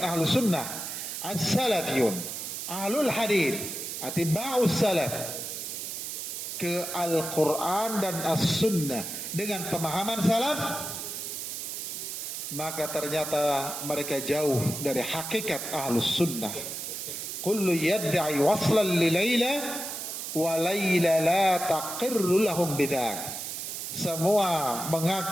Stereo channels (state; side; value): noise; right; hiss, 6 dB below the sound